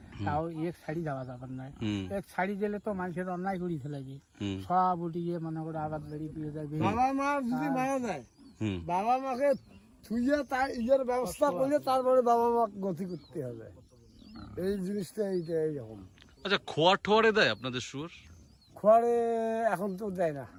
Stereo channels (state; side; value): identical; both; correlation 1.00